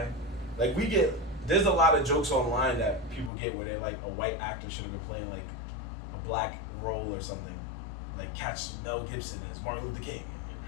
Like, there's a lot of jokes online that people get where they're like, a white actor should have been playing like a black role or something. Like, catch Mel Gibson as Martin Luther King.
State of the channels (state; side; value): drops out; right; at 3.3 s